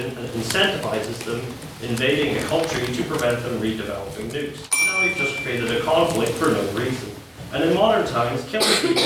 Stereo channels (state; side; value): identical; both; correlation 1.00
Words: and it incentivizes them invading a country to prevent them redeveloping nukes. Now we've just created a conflict for no reason. And in modern times, killing people